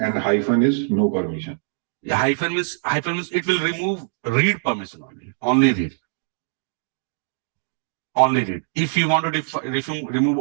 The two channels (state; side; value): silent; left; digital silence